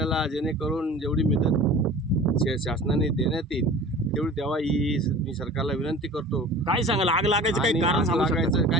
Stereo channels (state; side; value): normal; both; correlation 0.41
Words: जेणेकरून जेवढी मदत शासनाने देण्यात येईल तेवढी द्यावा ही मी सरकारला विनंती करतो। काय सांगाल, आग लागायचं काही कारण लागायचं